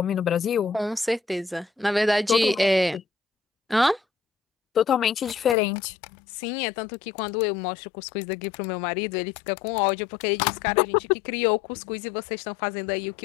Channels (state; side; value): drops out; right; at 5.6 s